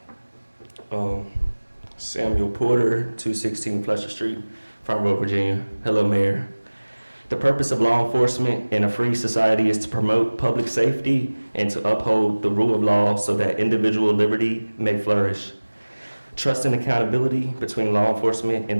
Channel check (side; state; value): both; inverted; correlation -1.00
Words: Samuel Porter, 216 Fletcher Street, Frondorf, Virginia. Hello, Mayor. The purpose of law enforcement in a free society is to promote public safety and to uphold the rule of law so that individual liberty may flourish. Trust and accountability between law enforcement and